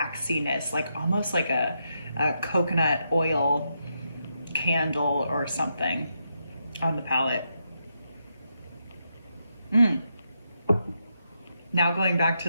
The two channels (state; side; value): inverted; both; correlation -0.82